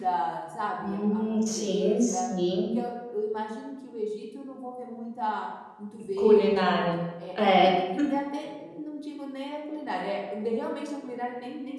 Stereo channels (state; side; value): identical; both; correlation 1.00